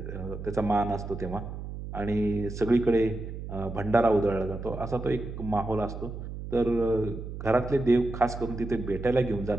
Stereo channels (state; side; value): noise; right; hum, 8 dB below the sound